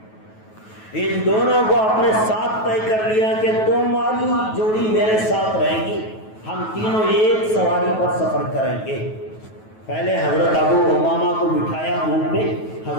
ان دونوں کو اپنے ساتھ طے کر لیا کہ تمہاری جوڑی میرے ساتھ رہے گی، ہم تینوں ایک سواری پر سفر کریں گے۔ پہلے حضرت ابو امامہ کو بٹھایا اونٹ پہ،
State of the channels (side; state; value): right; late; 9.3 ms